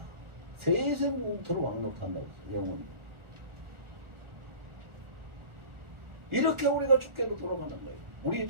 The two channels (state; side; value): late; left; 1.4 ms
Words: 세상 영토로 왕노릇한다. 영원히. 이렇게 우리가 주께로 돌아가는 거예요. 우리